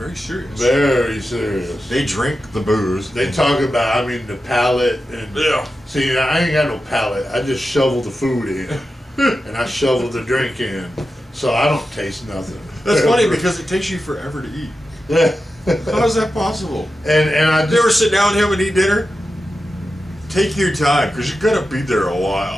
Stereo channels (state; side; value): normal; both; correlation 0.91